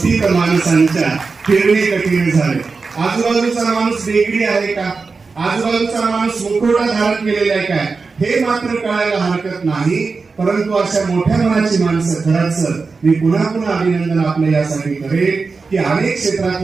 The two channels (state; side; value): quieter; left; 4.4 dB